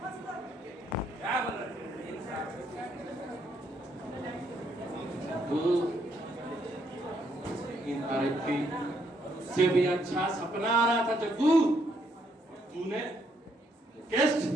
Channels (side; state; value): both; normal; correlation 0.73